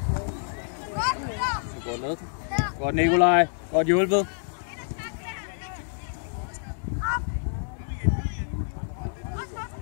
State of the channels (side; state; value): right; silent; digital silence